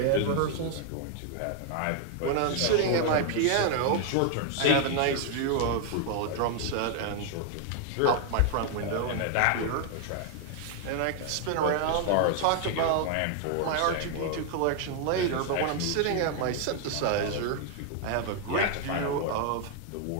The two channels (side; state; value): both; different; correlation 0.00